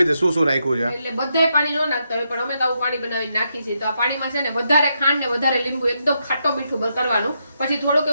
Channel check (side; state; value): both; inverted; correlation -0.81